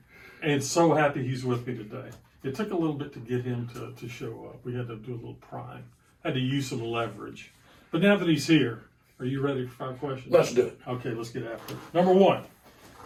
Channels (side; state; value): both; identical; correlation 1.00